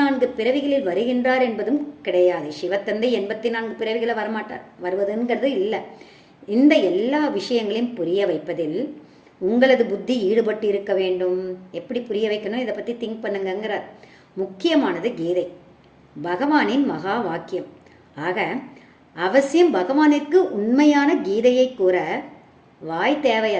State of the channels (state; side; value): identical; both; correlation 1.00